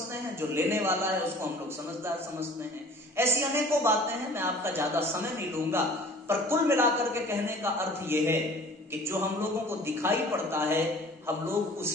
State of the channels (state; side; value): normal; both; correlation 0.47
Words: हैं, जो लेने वाला है उसको हम लोग समझदार समझते हैं। ऐसी अनेकों बातें हैं, मैं आपका ज्यादा समय नहीं लूंगा। पर कुल मिलाकर के कहने का अर्थ यह है कि जो हम लोगों को दिखाई पड़ता है हम लोग